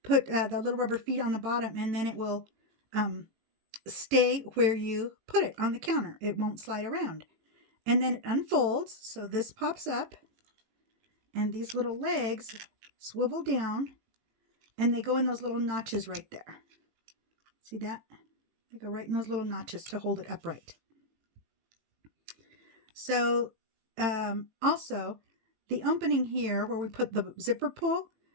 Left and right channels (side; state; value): left; late; 18 ms